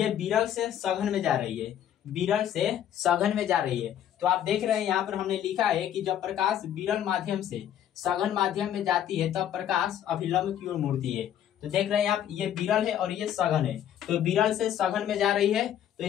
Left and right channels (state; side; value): quieter; right; 10.5 dB